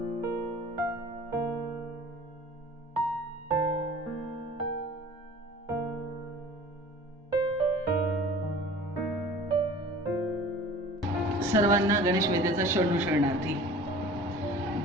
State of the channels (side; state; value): both; normal; correlation 0.44